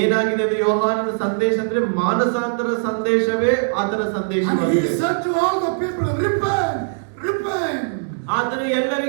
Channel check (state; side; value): silent; left; digital silence